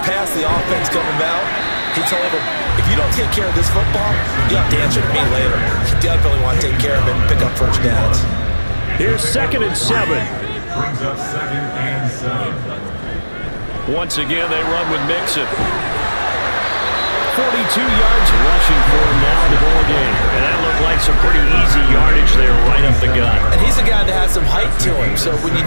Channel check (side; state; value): both; inverted; correlation -1.00